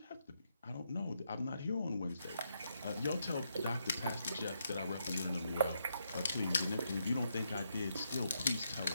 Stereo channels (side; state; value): both; inverted; correlation -0.79